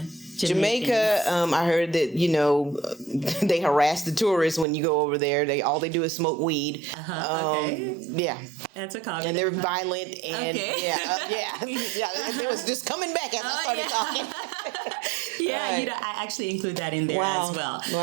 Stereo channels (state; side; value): drops out; left; at 4.7 s